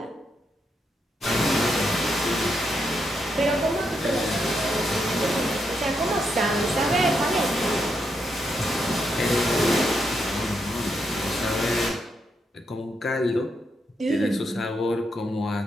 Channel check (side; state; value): both; normal; correlation 0.81